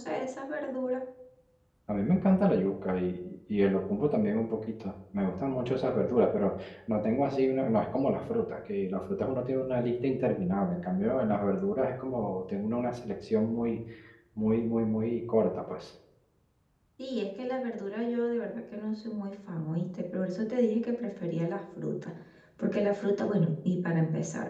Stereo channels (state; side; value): identical; both; correlation 1.00